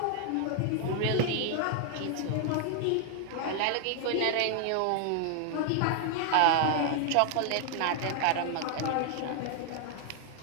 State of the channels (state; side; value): different; both; correlation 0.00